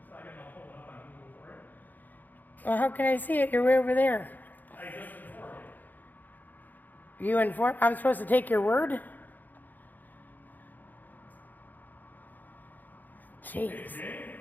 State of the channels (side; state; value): right; late; 0.085 ms